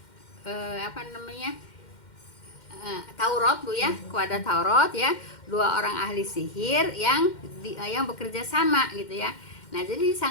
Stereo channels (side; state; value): right; late; 2.1 ms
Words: Taurat Bu ya, kepada Taurat ya, dua orang ahli sihir yang bekerja sama gitu ya. Nah, jadi